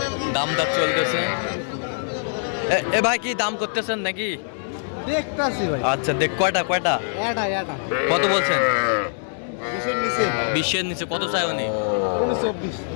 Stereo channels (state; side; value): silent; right; digital silence